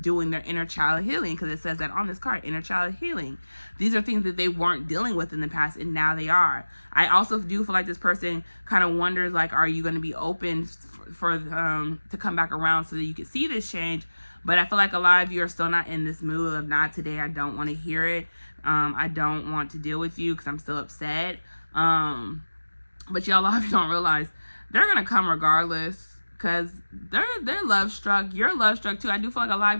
doing their inner child healing, because it says that on this card, inner child healing. These are things that they weren't dealing with in the past, and now they are. I also do feel like this person kind of wonders, like, are you going to be open for to come back around so that you can see this change? But I feel like a lot of you are still not in this mood of, not today, I don't want to hear it. I don't want to deal with you because I'm still upset. But y'all, a lot of you don't realize they're going to come regardless, because they're love struck. You're love struck too. I do feel like a lot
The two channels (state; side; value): inverted; both; correlation -1.00